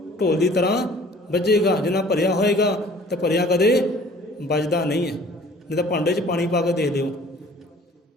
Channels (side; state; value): both; normal; correlation 0.51